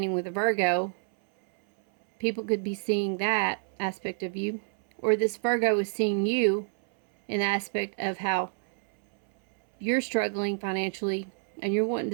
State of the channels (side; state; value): left; silent; 59 dB below the other